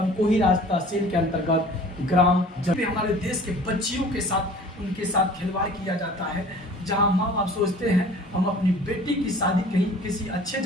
राज तहसील के अंतर्गत ग्राम जब हमारे देश के बच्चियों के साथ उनके साथ खिलवाड़ किया जाता है, जहां माँ बाप सोचते हैं हम अपनी बेटी की शादी कहीं किसी अच्छे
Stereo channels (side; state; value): both; normal; correlation 0.47